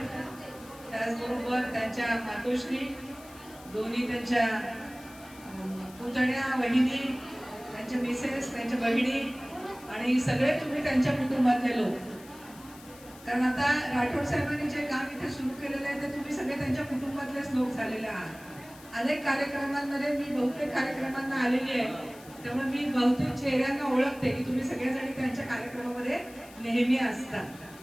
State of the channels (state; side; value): noise; left; hiss, 21 dB below the sound